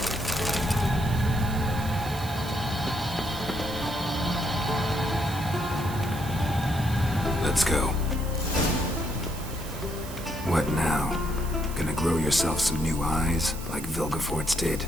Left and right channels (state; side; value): noise; right; hiss, 14 dB below the sound